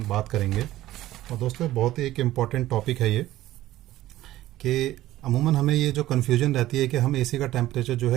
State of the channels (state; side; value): quieter; left; 15.2 dB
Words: बात करेंगे। और दोस्तों, बहुत ही एक इम्पॉर्टेंट टॉपिक है ये कि अमूमन हमें ये जो कन्फ्यूजन रहती है कि हम एसी का टेम्परेचर जो